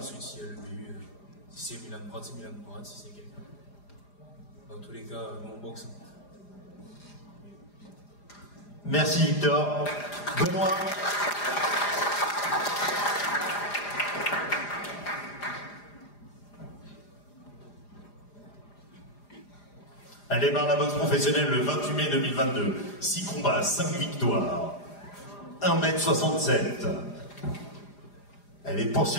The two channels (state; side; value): late; right; 4.9 ms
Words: s'il y a le BU, si c'est Milan Pratt, c'est Milan Pratt. Si c'est quelqu'un. Dans tous les cas, nous on boxe. Merci Victor. Benoît. Elle démarre la boxe professionnelle le 28 mai 2022. 6 combats, 5 victoires. 1m67. Elle est